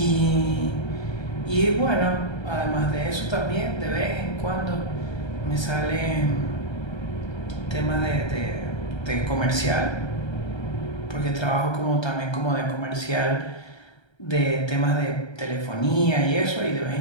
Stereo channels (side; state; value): right; late; 1.3 ms